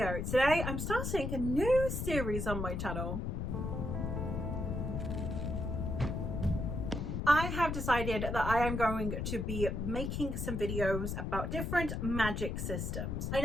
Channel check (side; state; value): left; noise; rumble, 2 dB below the sound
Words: Today I'm starting a new series on my channel. I have decided that I am going to be making some videos about different magic systems. I